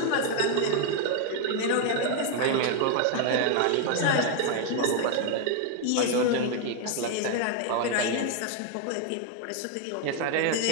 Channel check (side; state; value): both; different; correlation 0.00